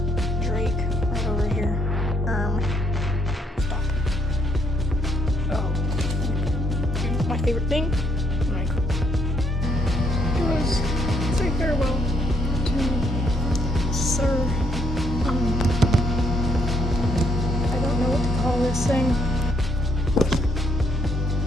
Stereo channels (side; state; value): both; normal; correlation 0.72